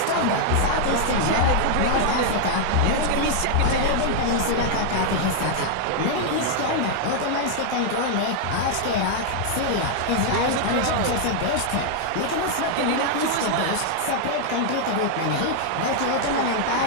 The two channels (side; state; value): both; different; correlation 0.00